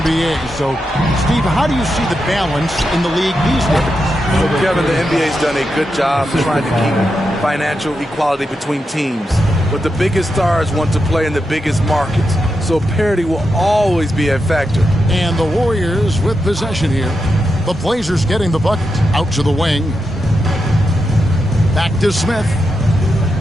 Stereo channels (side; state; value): both; normal; correlation 0.87